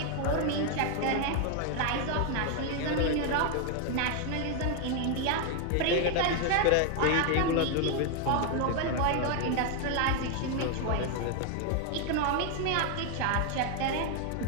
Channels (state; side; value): different; both; correlation 0.01